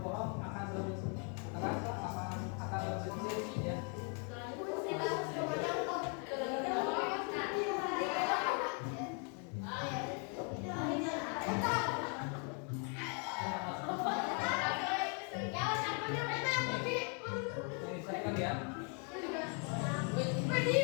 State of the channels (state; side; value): quieter; right; 38.9 dB